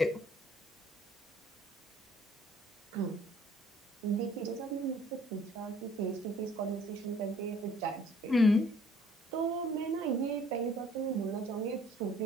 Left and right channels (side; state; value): both; normal; correlation 0.57